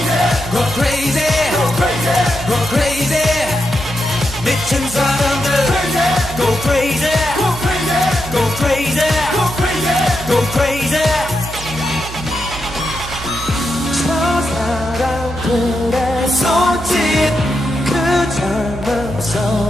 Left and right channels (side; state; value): right; noise; hum, 11 dB below the sound